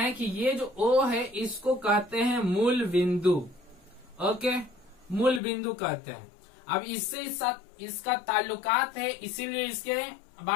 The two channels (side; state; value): right; drops out; at 5.4 s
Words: कि ये जो ओ है इसको कहते हैं मूल बिंदु। ओके, मूल बिंदु कहते हैं। अब इससे इसका ताल्लुकात है, इसीलिए इसके